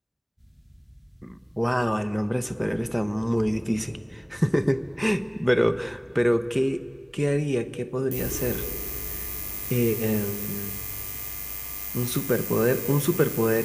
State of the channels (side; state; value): both; identical; correlation 1.00